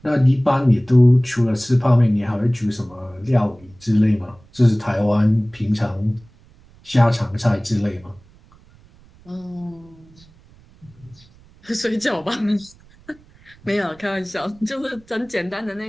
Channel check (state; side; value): noise; right; rumble, 27 dB below the sound